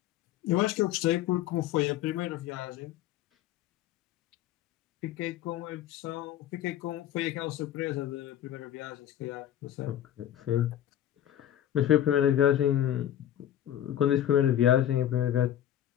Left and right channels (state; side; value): quieter; right; 11.3 dB